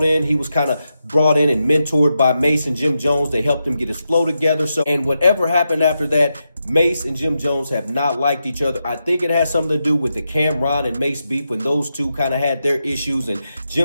in. He was kind of brought in and mentored by Mase and Jim Jones. They helped him get his flow together. And whatever happened after that, Mase and Jim Jones have not liked each other. I think it has something to do with the Cameron and Mase beef when those two kind of had their issues, and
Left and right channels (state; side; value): inverted; both; correlation -0.87